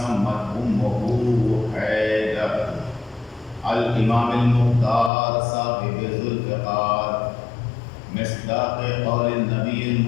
أمه حيدر الإمام المختار صاحب ذو الفقار مصداق قول النبي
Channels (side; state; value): right; drops out; at 5.1 s